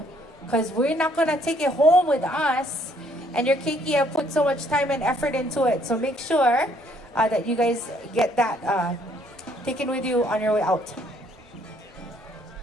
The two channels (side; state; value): both; normal; correlation 0.66